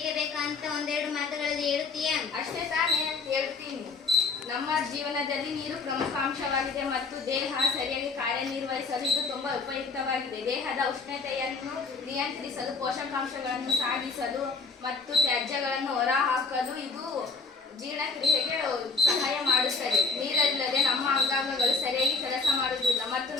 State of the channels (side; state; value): right; quieter; 4.3 dB